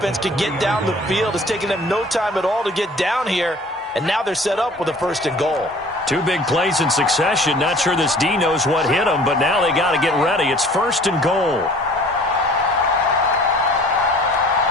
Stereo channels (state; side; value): normal; both; correlation 0.50